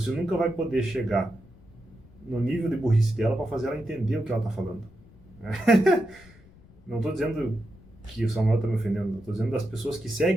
nunca vai poder chegar no nível de burrice dela para fazer ela entender o que ela está falando. Não estou dizendo que o Samuel está me ofendendo, estou dizendo das pessoas que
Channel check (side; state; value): left; noise; rumble, 24 dB below the sound